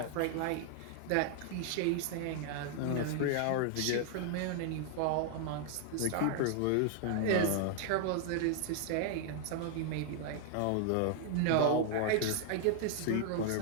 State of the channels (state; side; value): different; both; correlation 0.00